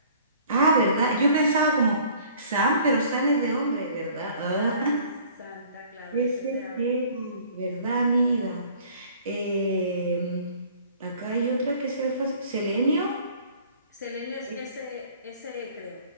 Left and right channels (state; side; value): inverted; both; correlation -0.53